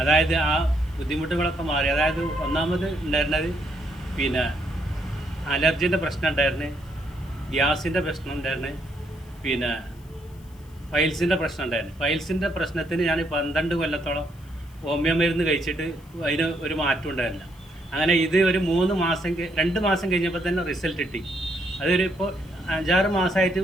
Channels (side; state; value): left; noise; hiss, 28 dB below the sound